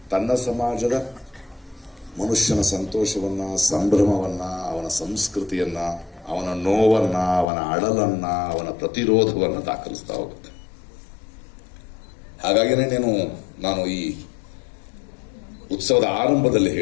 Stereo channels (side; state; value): right; drops out; at 7.5 s